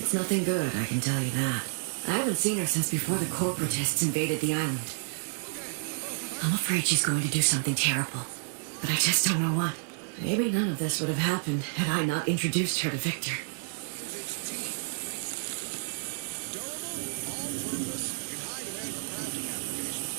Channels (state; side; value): silent; left; digital silence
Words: nothing good, I can tell you that. I haven't seen her since before the corporatists invaded the island. I'm afraid she's going to do something terrible. But I just don't know what. Maybe none of this would have happened had I not introduced her to Victor.